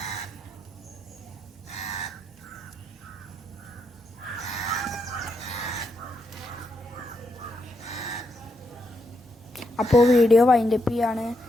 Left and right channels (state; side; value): normal; both; correlation 0.81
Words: അപ്പോൾ വീഡിയോ വൈൻഡപ്പ് ചെയ്യാണ്.